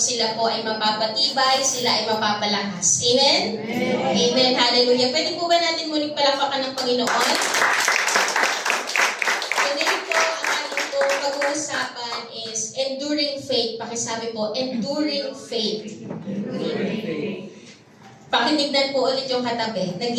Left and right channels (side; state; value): both; identical; correlation 1.00